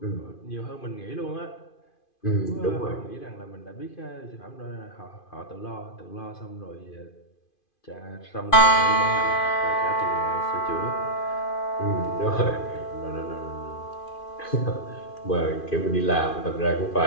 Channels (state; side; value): late; right; 2.5 ms